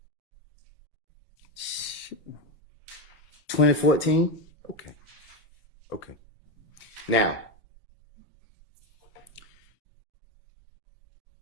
2014. Okay. Okay. Now,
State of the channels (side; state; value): both; normal; correlation 0.14